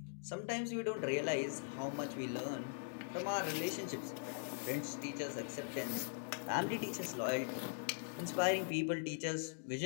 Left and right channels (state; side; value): silent; right; digital silence